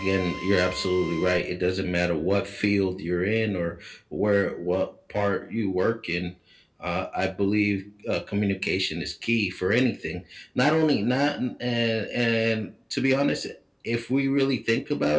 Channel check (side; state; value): both; identical; correlation 1.00